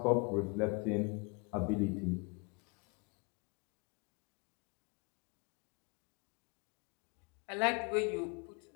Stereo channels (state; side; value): quieter; right; 31.4 dB